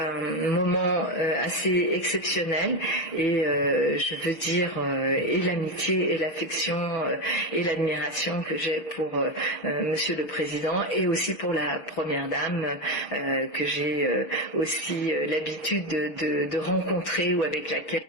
moment assez exceptionnel et je veux dire et l'amitié et l'affection et l'admiration que j'ai pour Monsieur le Président et aussi pour la Première Dame que j'ai aussi l'habitude de rencontrer ou avec laquelle.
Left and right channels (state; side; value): late; right; 6.6 ms